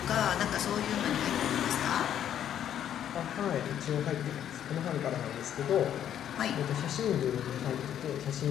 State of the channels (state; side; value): quieter; right; 10.1 dB